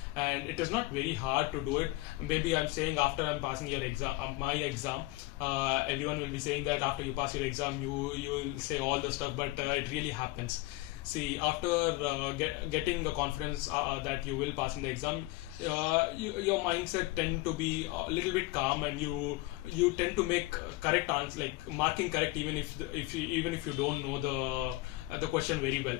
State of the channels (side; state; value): right; quieter; 20.1 dB